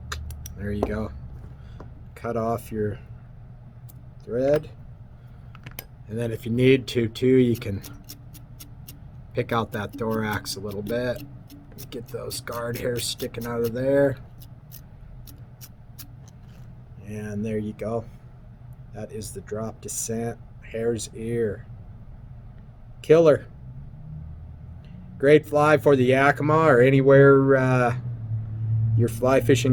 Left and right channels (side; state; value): both; identical; correlation 1.00